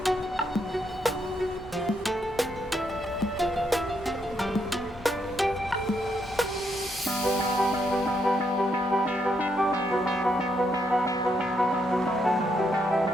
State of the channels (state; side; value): noise; left; hum, 27 dB below the sound